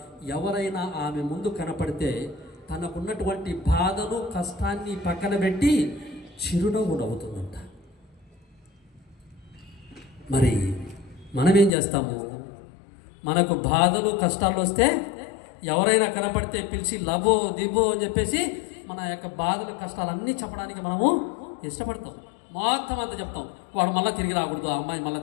ఎవరైనా ఆమె ముందు కనపడితే తనకున్నటువంటి బాధను, కష్టాన్ని పక్కన పెట్టి చిరునవ్వు నవ్వుతుందంట. మరి మనమేం చేస్తాము? మనకు బాధలు, కష్టాలు వస్తే ఎవరైనా కనపడితే పిలిచి లబో దిబో అని చెప్పేసి మన యొక్క బాధలు, కష్టాలన్నీ చెప్పడానికి మనము ఇష్టపడతాం. మొత్తం అంతా చెప్తాం. వాడు మళ్ళీ తిరిగి రాకూడదు, అమ్మాయి మళ్ళీ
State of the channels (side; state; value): right; drops out; at 11.7 s